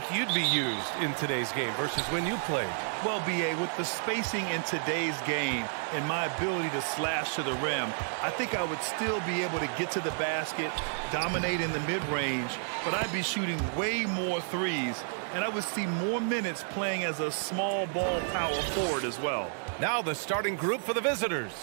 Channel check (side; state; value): left; silent; digital silence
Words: you'd be used in today's game versus when you played? Well, B.A., with the spacing in today's game and my ability to slash to the rim, I think I would still be able to get to the basket, dominate in the mid-range, but I'd be shooting way more threes, and I would see more minutes playing as a small ball power forward as well. Now the starting group for the visitors.